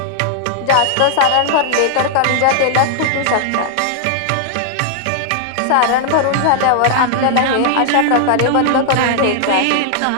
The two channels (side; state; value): both; different; correlation 0.00